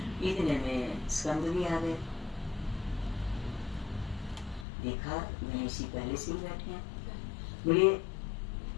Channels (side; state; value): right; drops out; at 4.7 s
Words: इतने में स्कंद भी आ गए, देखा गणेश जी पहले से ही बैठे हैं। बोले